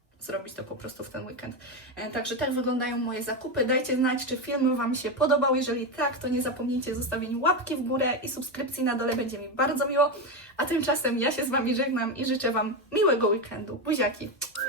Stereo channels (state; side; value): normal; both; correlation 0.12